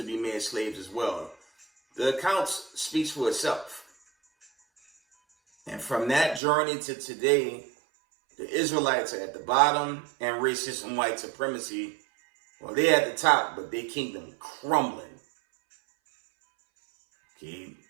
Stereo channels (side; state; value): left; drops out; at 6.4 s